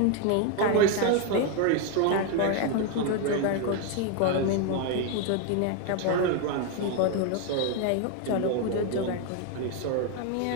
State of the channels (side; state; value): both; different; correlation 0.01